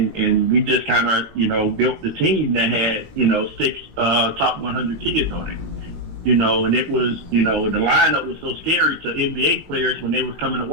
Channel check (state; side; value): late; left; 19 ms